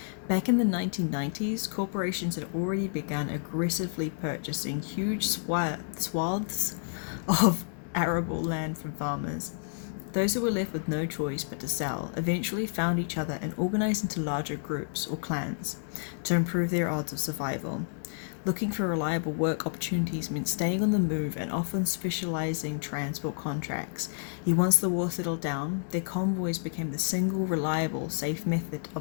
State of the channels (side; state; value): right; silent; digital silence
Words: Back in the 1990s, corporations had already begun aggressively purchasing huge swaths of arable land from farmers. Those who were left with no choice but to sell eventually found each other and organized into larger groups or clans to improve their odds of survival. Looking for reliable work opportunities meant staying on the move and often specializing transport contracts. Yet once the war settled down, their convoys became the single reliable, safe method